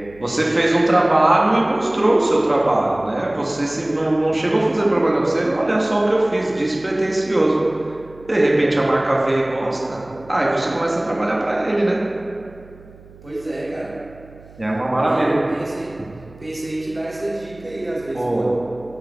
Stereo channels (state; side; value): noise; right; hum, 22 dB below the sound